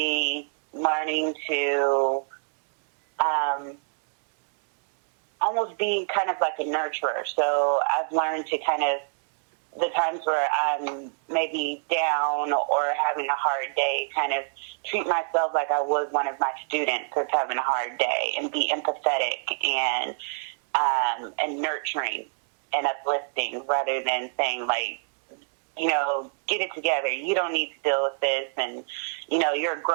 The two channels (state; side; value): silent; left; digital silence